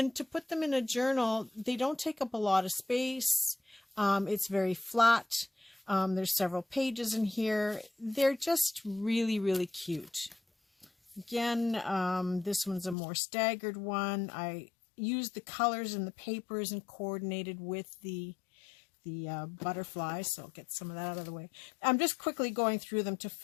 to put them in a journal, they don't take up a lot of space. It's very flat. There's several pages in here. They're just really, really cute. Again, this one's a more staggered one. I used the colors in the papers and coordinated with the butterflies, so I'll get some of that out of the way. I'm just quickly going through them to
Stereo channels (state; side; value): drops out; right; at 13.0 s